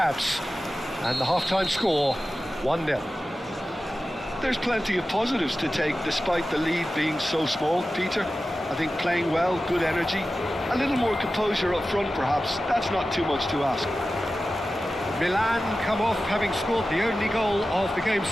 And the half-time score, 1-0. There's plenty of positives to take despite the lead being so small, Peter. I think playing well, good energy, a little more composure up front perhaps. That's not too much to ask. Milan come off having scored the only goal of the game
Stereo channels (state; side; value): normal; both; correlation 0.94